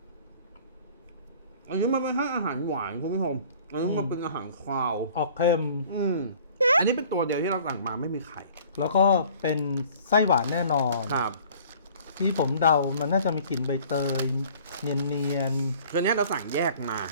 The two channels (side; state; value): both; inverted; correlation -0.51